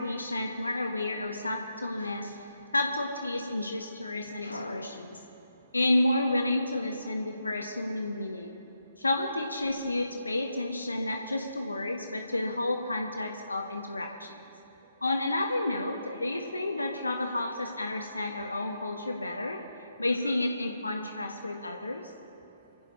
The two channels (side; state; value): both; inverted; correlation -0.84